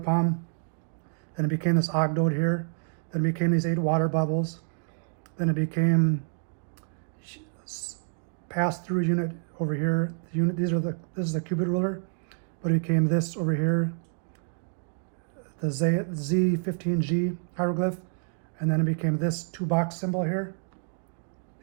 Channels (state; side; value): silent; left; 59 dB below the other